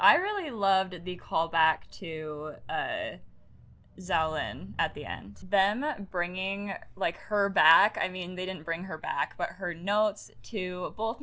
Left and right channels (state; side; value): identical; both; correlation 1.00